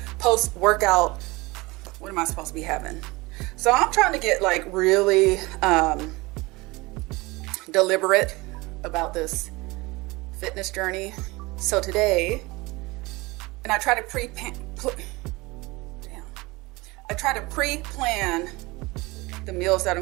post-workout. What am I supposed to be having? So I'm trying to get like really deliberate about this fitness journey. So today, and I try to pre-plan the meals that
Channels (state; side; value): quieter; left; 22.9 dB